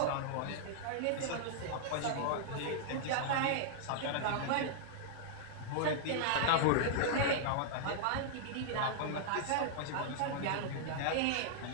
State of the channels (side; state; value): both; different; correlation -0.01